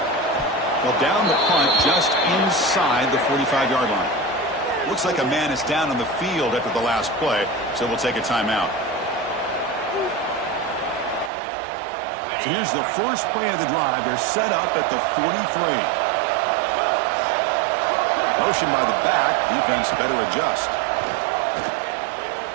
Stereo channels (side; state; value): left; drops out; at 11.3 s